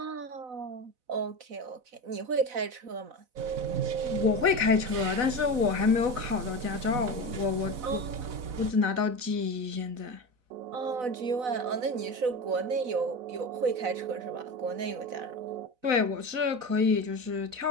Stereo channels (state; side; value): late; left; 4.0 ms